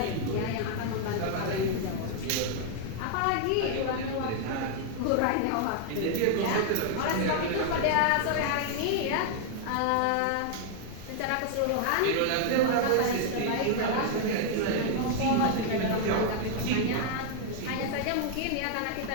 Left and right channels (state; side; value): different; both; correlation 0.00